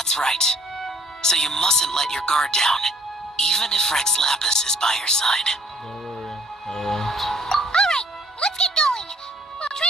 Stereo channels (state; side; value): normal; both; correlation 0.61